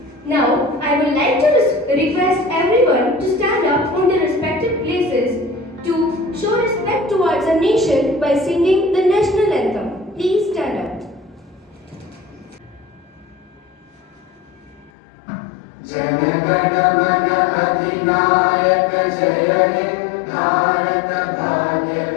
Now, I would like to request everyone to stand up on their respective places to show respect towards our nation by singing the national anthem. Please stand up. जनगण मन अधिनायक जय हे भारत भाग्य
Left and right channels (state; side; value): drops out; right; at 14.9 s